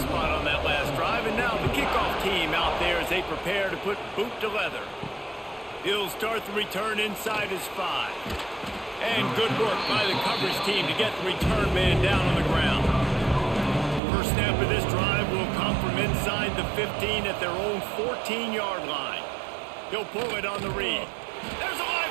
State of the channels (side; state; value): left; drops out; at 14.0 s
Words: on that last drive, and now the kickoff team out there as they prepare to put boot to leather. He'll start the return inside his 5. And good work by the coverage team to get the return man down on the ground. First snap of this drive will come from inside the 15 at their own 14-yard line. He'll pull it on the read. There's a